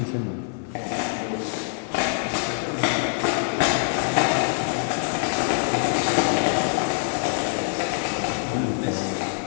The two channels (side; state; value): right; silent; 62 dB below the other